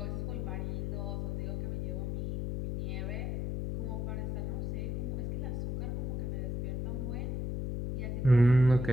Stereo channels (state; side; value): noise; left; hum, 1 dB below the sound